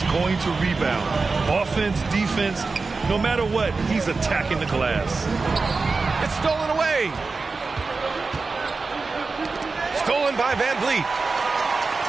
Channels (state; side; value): quieter; left; 4.1 dB